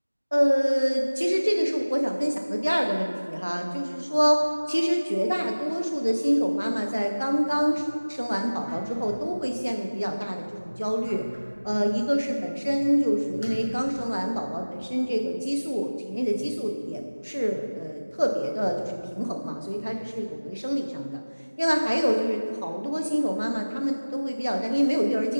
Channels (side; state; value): both; inverted; correlation -1.00